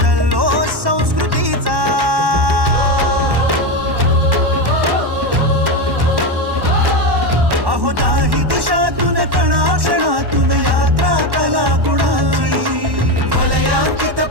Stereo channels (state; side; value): late; left; 1.1 ms